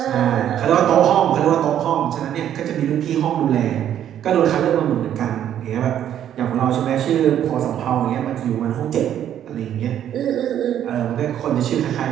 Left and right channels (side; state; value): left; quieter; 10.5 dB